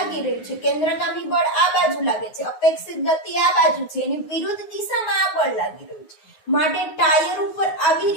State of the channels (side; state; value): right; late; 9.5 ms